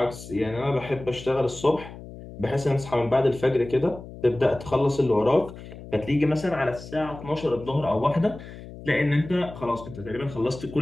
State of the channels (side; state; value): left; noise; hum, 14 dB below the sound